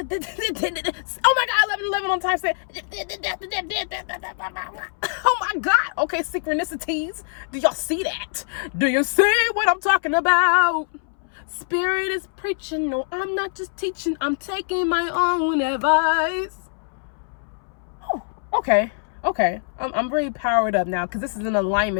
my God, 11 on time set. Oh my God. Okay, synchronicities. Do y'all see that? Do you see what I'm talking about? Spirit is preaching. No, I'm not just teaching. I'm taking my own advice. Oh, okay. I'm really powered up now because this is an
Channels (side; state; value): right; silent; 63 dB below the other